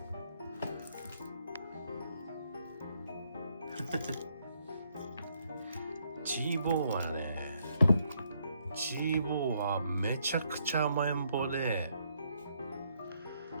チーボーはね、チーボーはめちゃくちゃ甘えん坊で、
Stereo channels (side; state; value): both; inverted; correlation -0.73